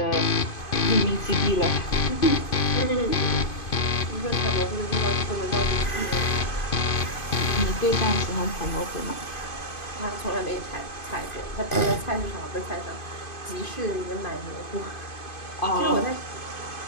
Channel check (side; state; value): right; late; 2.5 ms